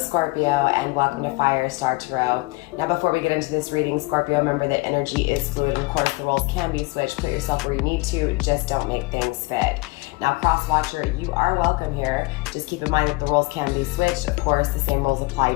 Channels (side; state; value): right; quieter; 24.6 dB